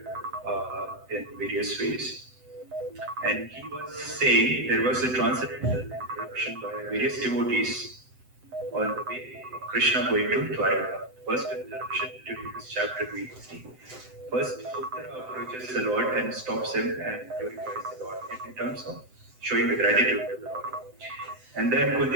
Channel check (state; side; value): late; left; 7.9 ms